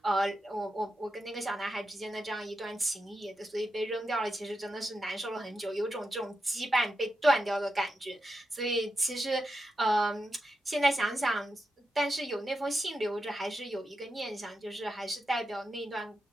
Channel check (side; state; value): both; normal; correlation 0.88